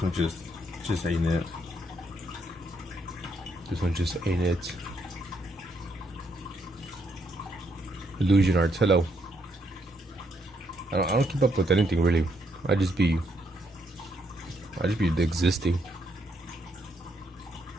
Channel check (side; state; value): both; normal; correlation 0.75